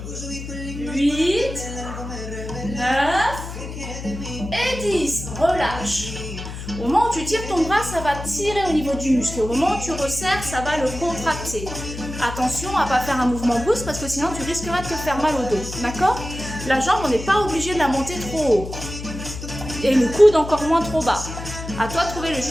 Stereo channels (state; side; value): noise; left; hum, 9 dB below the sound